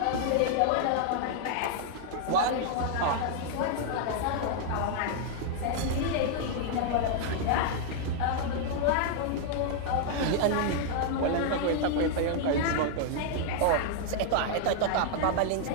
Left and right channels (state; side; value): different; both; correlation -0.01